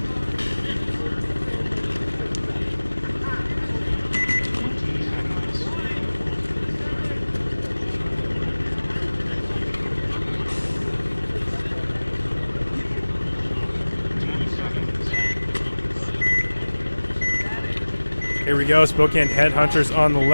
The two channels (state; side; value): inverted; both; correlation -1.00